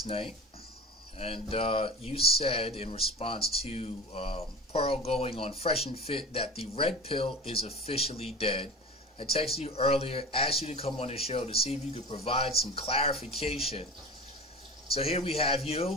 night, and you said in response to Pearl going on Fresh and Fit that the red pill is officially dead. I texted you earlier, asked you to come on the show to see if you could provide some clarification. So here we have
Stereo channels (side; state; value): both; normal; correlation 0.33